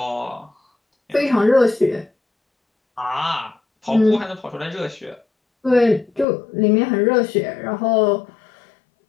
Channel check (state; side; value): drops out; right; at 6.2 s